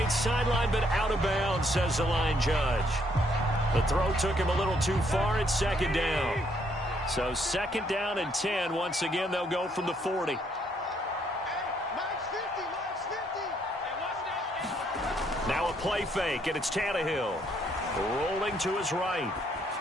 sideline, but out of bounds, says the line judge. The throw took him a little too far. It's second down. So 2nd down and 10. Once again, they'll go from the 40. Now a play fake, and it's Tannehill. Rolling to his right.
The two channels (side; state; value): both; normal; correlation 0.70